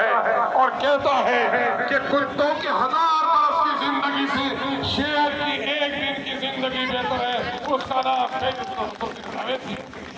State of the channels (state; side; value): identical; both; correlation 1.00